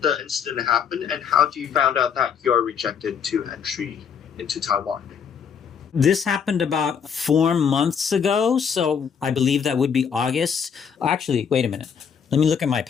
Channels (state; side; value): quieter; right; 7.2 dB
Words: the incident happen, and how do you found out that you are rejected to entry into Taiwan? This happened about 4 months ago, so I believe that would be August. Actually, wait a minute. Let me look at my